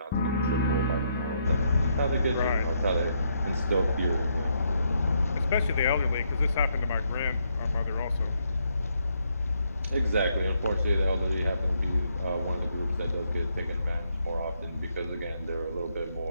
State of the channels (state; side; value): inverted; both; correlation -0.75